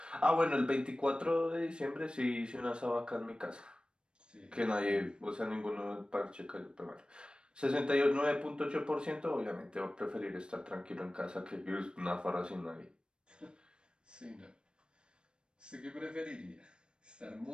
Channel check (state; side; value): late; left; 0.053 ms